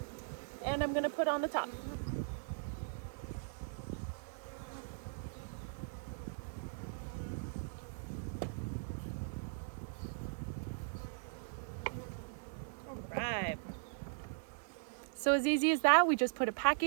And I'm gonna put on the top. All right. So as easy as that, we just put a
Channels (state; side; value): silent; left; 52 dB below the other